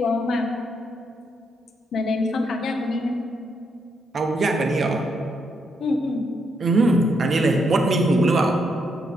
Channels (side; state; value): both; normal; correlation 0.78